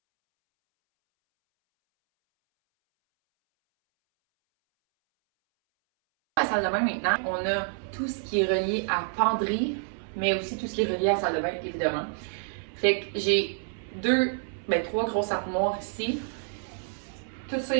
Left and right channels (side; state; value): left; silent; 59 dB below the other